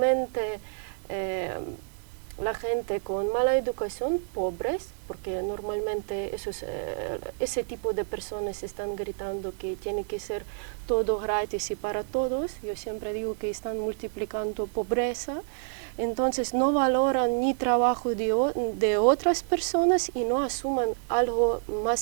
la gente con mala educación, pobres, porque normalmente ese tipo de personas están gritando que tiene que ser todo gratis y para todos. Yo siempre digo que están multiplicando pobreza. Entonces no valoran ni trabajo de otras personas y no asuman algo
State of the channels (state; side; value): silent; left; digital silence